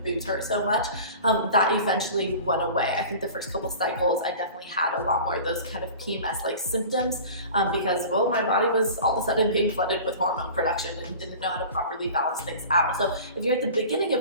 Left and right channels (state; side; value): inverted; both; correlation -0.39